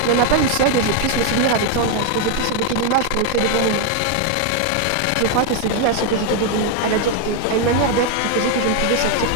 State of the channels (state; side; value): different; both; correlation 0.01